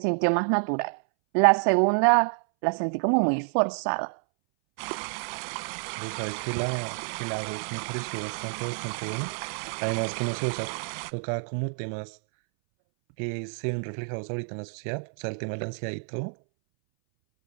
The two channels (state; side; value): silent; left; 59 dB below the other